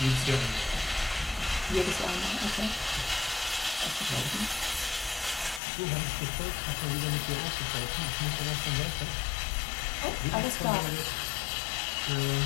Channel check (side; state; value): right; drops out; at 5.6 s